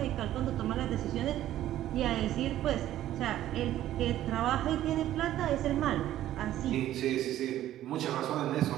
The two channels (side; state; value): left; quieter; 13.1 dB